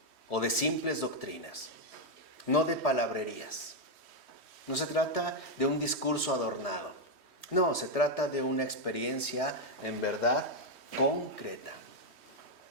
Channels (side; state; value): left; late; 3.1 ms